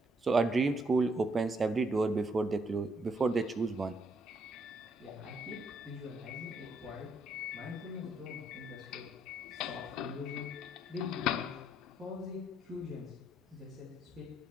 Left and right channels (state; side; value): normal; both; correlation 0.72